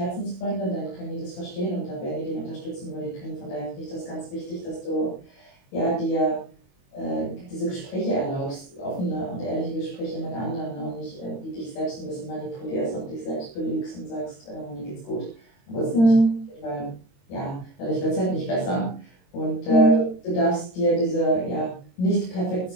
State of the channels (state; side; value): late; right; 22 ms